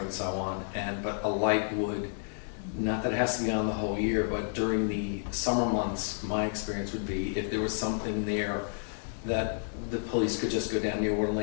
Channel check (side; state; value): right; silent; digital silence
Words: and so on. But a light would, not that it has to be on the whole year, but during the summer months, my experience would be if there was something there that the police could just go down near Water